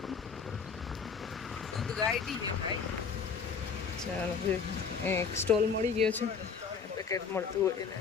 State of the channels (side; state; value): right; quieter; 5.9 dB